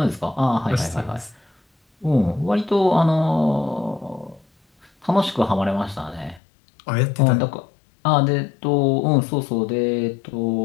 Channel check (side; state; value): right; drops out; at 6.4 s